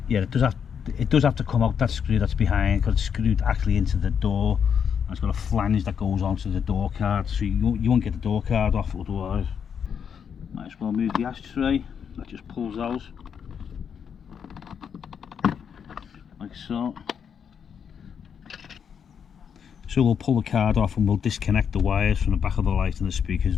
Yeah, it does have to come out, that screw that's behind, because it's screwed actually into the door, and it's got a flange that goes onto the door card, so you won't get the door card off otherwise. Might as well move the ashtray. That just pulls out like so. So we'll pull the card off and we'll disconnect the wires from the back of the light and the speakers,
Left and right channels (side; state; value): right; quieter; 7.4 dB